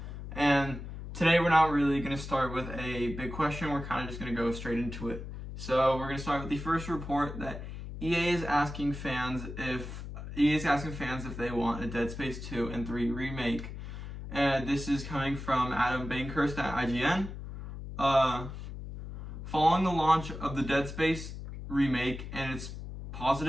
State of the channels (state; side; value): noise; left; hum, 9 dB below the sound